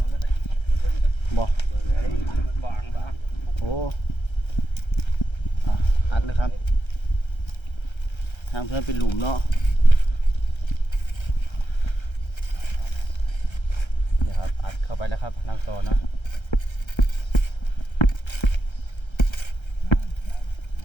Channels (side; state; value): right; late; 1.3 ms